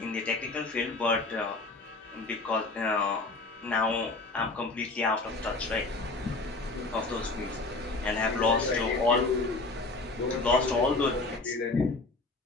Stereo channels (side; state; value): right; quieter; 3.4 dB